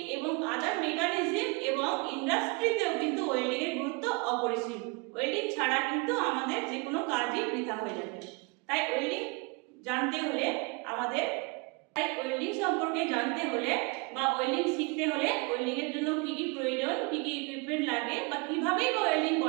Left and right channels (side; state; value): left; quieter; 29.7 dB